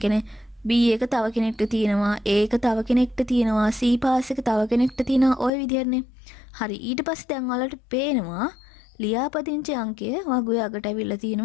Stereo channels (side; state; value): right; drops out; at 5.5 s